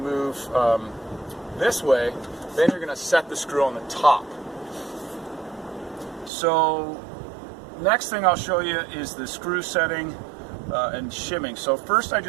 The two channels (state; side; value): drops out; left; at 6.3 s